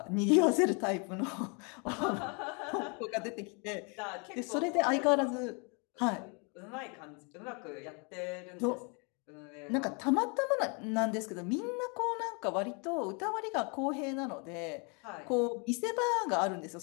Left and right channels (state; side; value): quieter; right; 34.0 dB